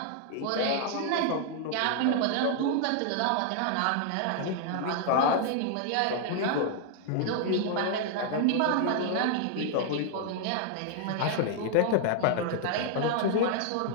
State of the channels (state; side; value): different; both; correlation 0.00